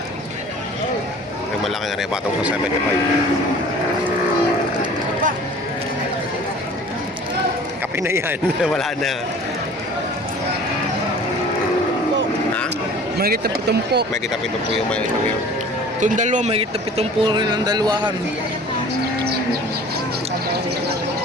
Ay, malaking aray. Patong sa 75. Kape na yan. Wala na. Ha? Mahigit na 70. May kita pito po yung may ito yun. Itong dalawa, mahigit na 70 rin ang dalawahan.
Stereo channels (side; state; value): both; normal; correlation 0.46